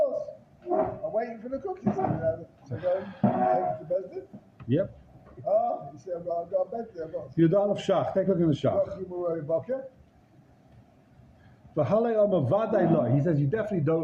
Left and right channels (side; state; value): both; identical; correlation 1.00